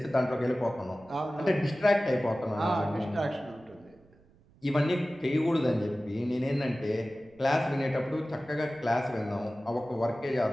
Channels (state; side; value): noise; right; rumble, 29 dB below the sound